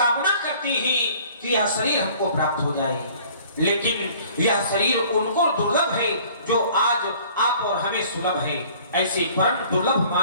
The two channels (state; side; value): inverted; both; correlation -0.52